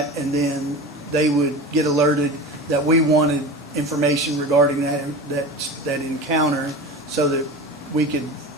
and then they would get alerted that we wanted information regarding that encounter so that we could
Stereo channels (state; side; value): normal; both; correlation 0.31